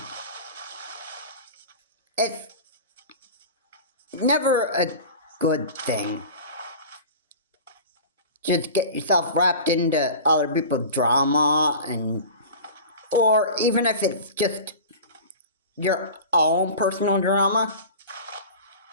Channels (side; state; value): both; inverted; correlation -0.35